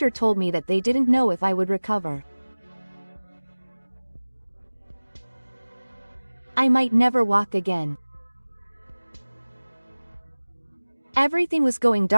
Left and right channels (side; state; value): both; inverted; correlation -1.00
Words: told me that they didn't know if I would recover. I might never walk again. Everything was going